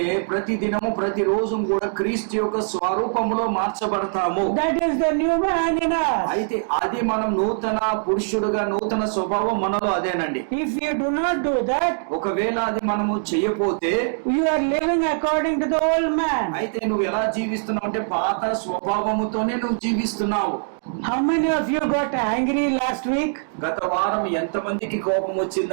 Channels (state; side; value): silent; left; digital silence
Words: ప్రతిరోజు కూడా క్రీస్తు యొక్క స్వరూపములో మార్చబడతాము. That is the new man in us. అయితే అది మనం నూతన పురుషుడుగా నూతన స్వభావం మనలో అదేనండి. If you do not do that, ఒకవేళ అది మనము చెయ్యపోతే you are living according to the old man. అయితే నువ్వు ఎలా జీవిస్తున్నావు అంటే పాత స్వభావముతోనే నువ్వు జీవిస్తున్నావు. How many of you got angry last week? గత వారం ఎంతమందికి కోపం